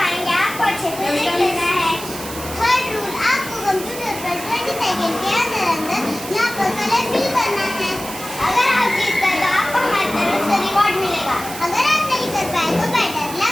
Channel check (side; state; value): right; noise; hiss, 11 dB below the sound